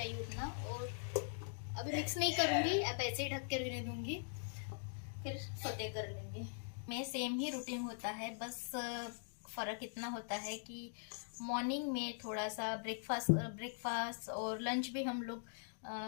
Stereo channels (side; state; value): right; silent; digital silence